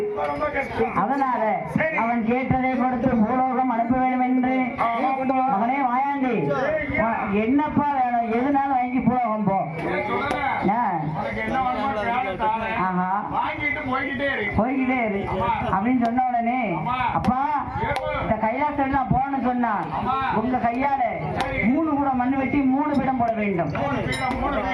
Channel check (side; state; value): both; identical; correlation 1.00